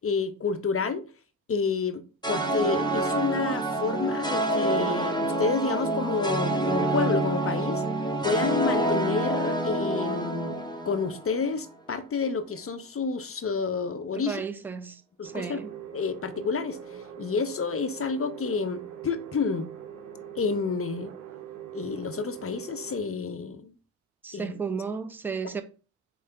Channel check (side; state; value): both; normal; correlation 0.20